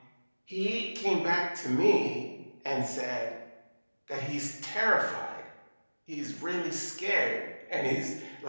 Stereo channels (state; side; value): inverted; both; correlation -1.00